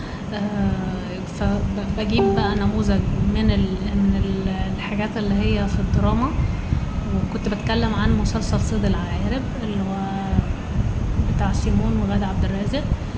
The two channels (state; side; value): identical; both; correlation 1.00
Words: فبجيب بقى نموذج من الحاجات اللي هي في الدراما، وكنت بتكلم عن مسلسل صيد العقارب اللي هو بتاع سيمون وغادة عبد الرازق.